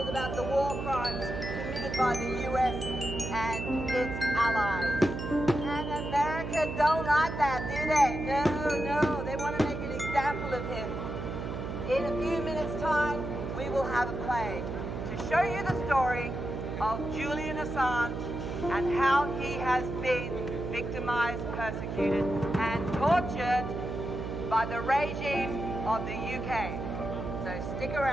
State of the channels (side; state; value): right; noise; hum, 5 dB below the sound